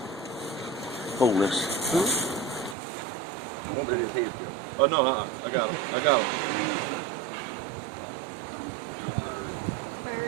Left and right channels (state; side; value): drops out; left; at 2.8 s